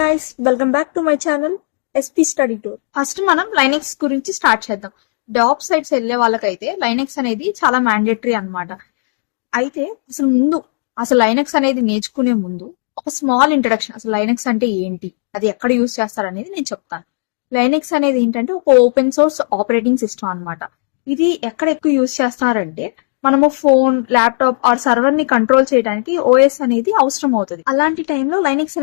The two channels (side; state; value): right; silent; digital silence